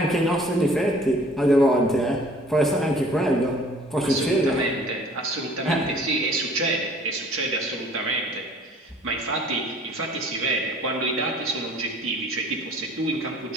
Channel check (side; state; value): both; normal; correlation 0.52